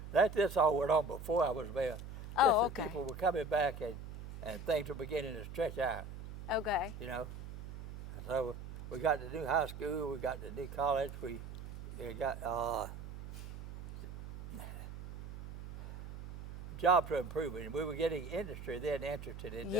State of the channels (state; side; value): noise; right; hum, 11 dB below the sound